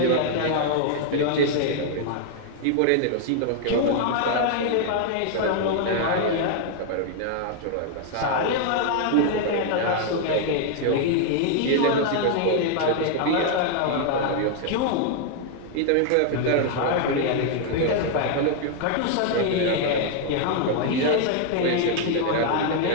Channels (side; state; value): both; different; correlation 0.00